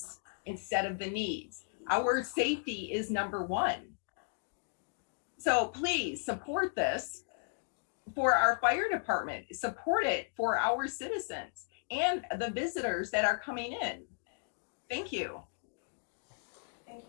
instead of the needs. Our safety is number one. So please support this for our fire department, support it for our citizens and the visitors that are coming in. Thank you. Thank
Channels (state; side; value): silent; right; digital silence